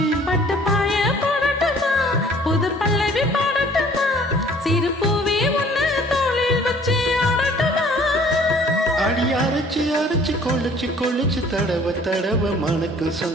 பட்டு பாய போடட்டுமா புது பல்லவி பாடட்டுமா சிறு பூவே உன்னை தோளில் வச்சு ஆடட்டுமா. அடி அரைச்சு அரைச்சு கொழுச்சு கொழுச்சு தடவ தடவ மணக்கும்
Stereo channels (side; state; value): both; normal; correlation 0.54